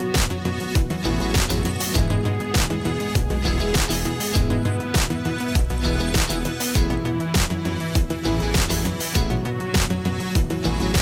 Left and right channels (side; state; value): both; identical; correlation 1.00